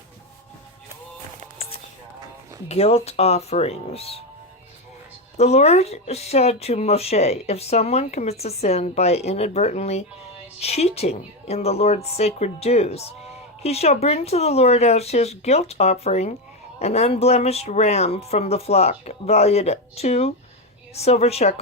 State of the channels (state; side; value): normal; both; correlation 0.11